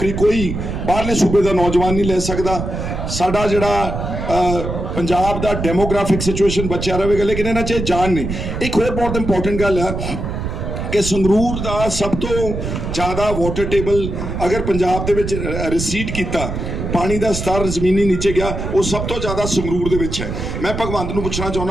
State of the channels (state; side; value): noise; right; rumble, 5 dB below the sound